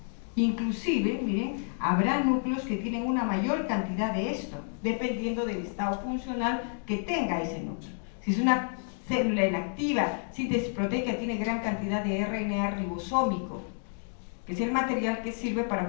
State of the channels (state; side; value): silent; right; 58 dB below the other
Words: Inclusive, miren, habrá núcleos que tienen una mayor cantidad de esto, dependiendo del estado funcional que tenga ese núcleo. Si es una célula inactiva, síntesis proteica, tiene gran cantidad de RNA ribosómico, que es el material que sirve para